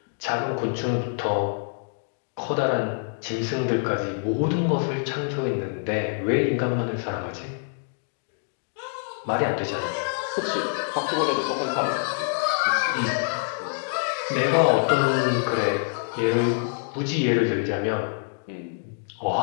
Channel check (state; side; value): silent; right; digital silence